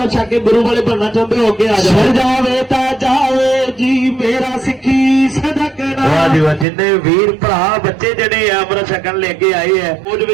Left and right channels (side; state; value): left; drops out; at 6.7 s